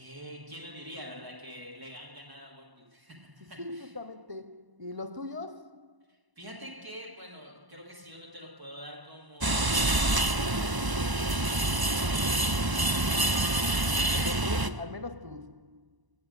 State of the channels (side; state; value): left; late; 1.0 ms